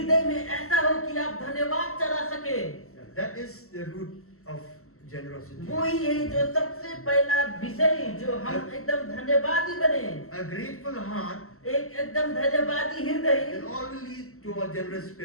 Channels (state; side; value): late; right; 0.63 ms